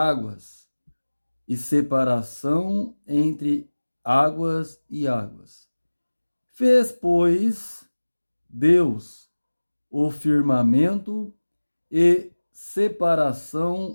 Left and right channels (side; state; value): both; inverted; correlation -1.00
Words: e separação entre águas e águas. Fez, pois, Deus o firmamento e